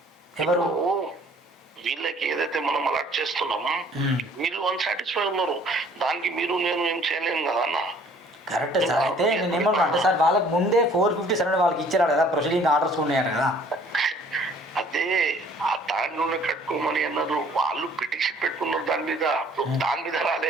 ఎవరు? వీళ్ళకి ఏదైతే మనం అలాట్ చేస్తున్నామో వీళ్ళు అన్సాటిస్ఫై ఉన్నారు. దానికి మీరు నేను ఏం చేయలేము కదా అన్న. Correct sir. అయితే నేను ఏమన్నా అంటే సార్ వాళ్ళకి ముందే 457 వాళ్ళకి ఇచ్చారు కదా, ప్రొసీడింగ్ ఆర్డర్స్ ఉన్నాయట కదా. అదే ఆ దాంట్లోనే కట్టుకోమని అన్నారు. వాళ్ళు పిటిషన్ పెట్టుకున్నారు దాని మీద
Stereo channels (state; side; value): normal; both; correlation 0.56